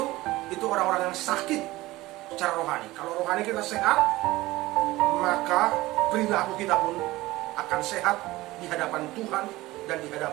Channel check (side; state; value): left; quieter; 18.6 dB